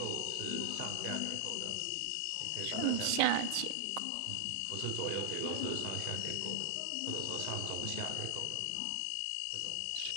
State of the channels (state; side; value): different; both; correlation -0.01